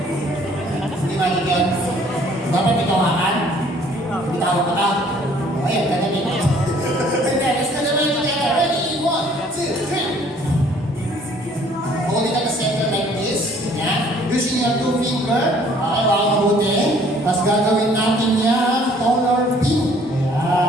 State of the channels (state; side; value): normal; both; correlation 0.58